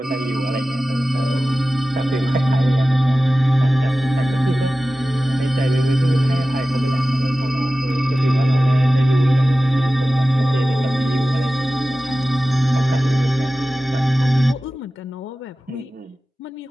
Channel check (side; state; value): both; normal; correlation 0.95